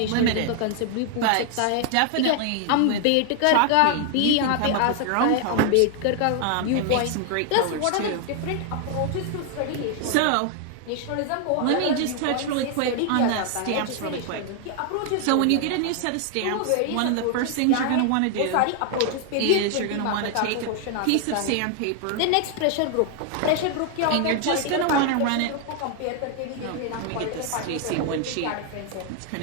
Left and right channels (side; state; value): both; different; correlation 0.00